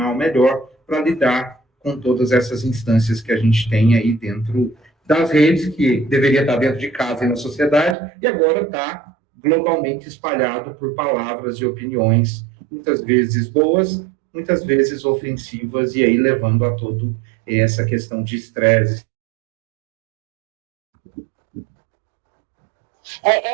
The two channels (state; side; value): drops out; left; at 8.0 s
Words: melhor para lidar com todas essas instâncias que a gente tem aí dentro das redes, que deveria estar dentro de casa e na sociedade, e agora está globalmente espalhado por palavras e opiniões, muitas vezes boas, muitas vezes ofensivas, e aí levando a todo essa questão de estresse.